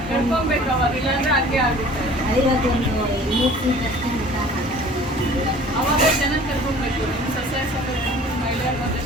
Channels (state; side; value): normal; both; correlation 0.48